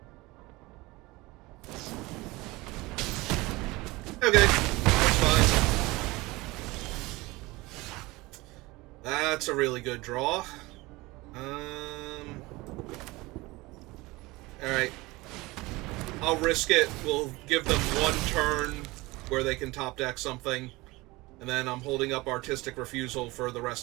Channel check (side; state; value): left; quieter; 21.8 dB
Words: Okay, that's fine. That's a really good draw. Alright. I'll risk it. We'll give them 1 turn where they can top deck something. And then I'm holding up Artistic Refusal for the